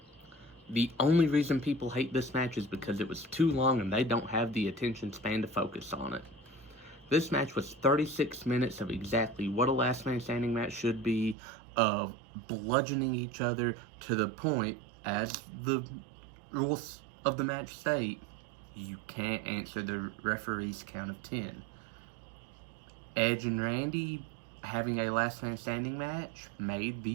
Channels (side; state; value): left; drops out; at 11.4 s